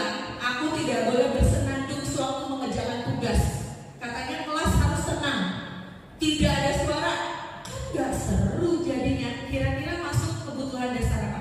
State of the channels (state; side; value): identical; both; correlation 1.00